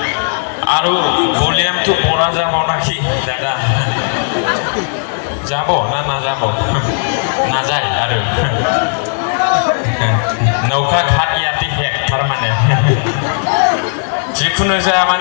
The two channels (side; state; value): right; silent; digital silence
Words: आरो भलिउमটো পড়া যাব নাকি দাদা যাব না না যাব না যায় आरो नौका घाट याति हेक थारमाने जिखुनु जाया